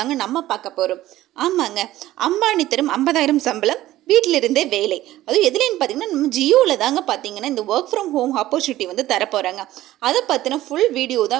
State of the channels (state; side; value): quieter; left; 15.0 dB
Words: நம்ம பார்க்க போகிறோம். ஆமாங்க, அம்பானி தரும் 50,000 சம்பளம், வீட்டிலிருந்தே வேலை. அதுவும் எதுலேன்னு பார்த்தீங்கன்னா, நம்ம ஜியோவில் தாங்க பார்த்தீங்கன்னா இந்த ஒர்க் ஃப்ரம் ஹோம் ஆப்பர்ச்சுனிட்டி வந்து தரப்போகிறாங்க. அதை பற்றின ஃபுல் வீடியோ